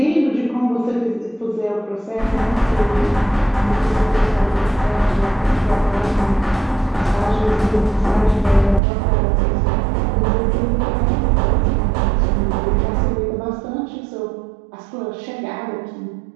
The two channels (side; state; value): left; drops out; at 8.8 s